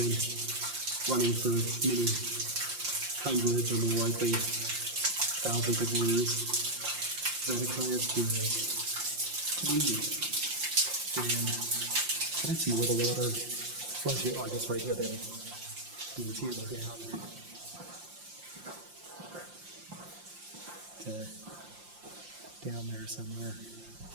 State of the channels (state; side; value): late; left; 5.7 ms